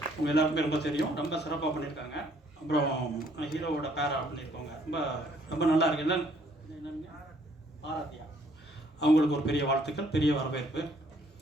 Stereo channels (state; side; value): normal; both; correlation 0.64